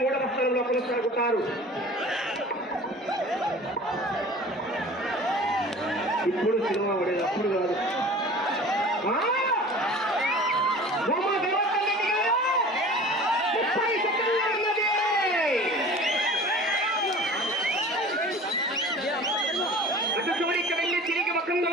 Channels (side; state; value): both; normal; correlation 0.42